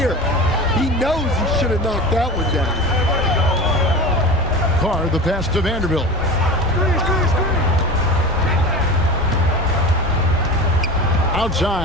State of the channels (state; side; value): normal; both; correlation 0.32